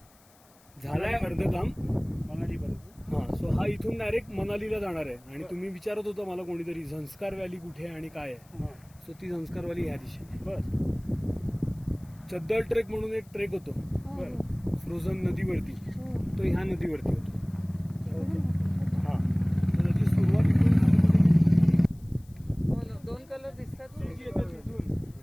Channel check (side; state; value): left; noise; hiss, 29 dB below the sound